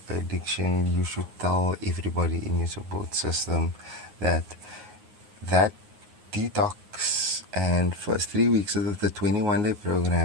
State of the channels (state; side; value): late; left; 9.6 ms